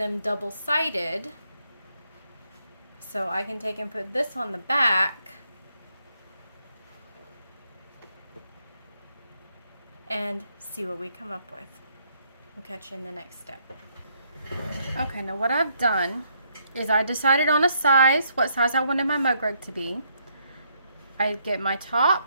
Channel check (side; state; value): both; inverted; correlation -0.73